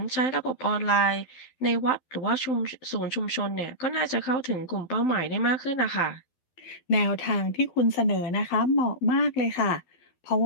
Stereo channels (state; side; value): late; right; 12 ms